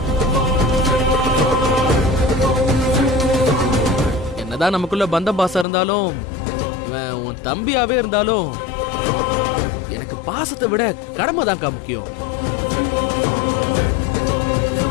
என்னதான் நமக்குள்ள பந்தம் பாசம் இருந்தாலும், இவன் உன் தம்பியாவே இருந்தாலும் எனக்கு பாசத்தை விட கடமை தான்க்கா முக்கியம்.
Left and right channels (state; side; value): drops out; right; at 5.7 s